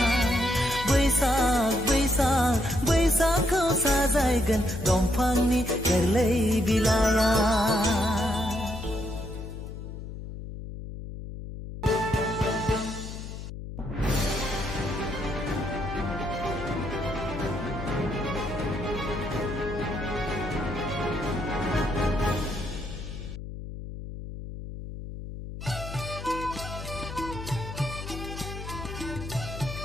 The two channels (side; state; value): left; noise; hum, 9 dB below the sound